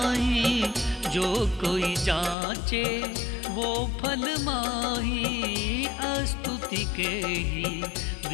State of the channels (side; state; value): right; drops out; at 2.4 s